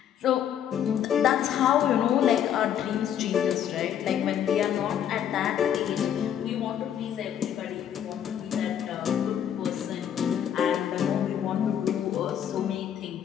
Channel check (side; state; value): right; quieter; 9.6 dB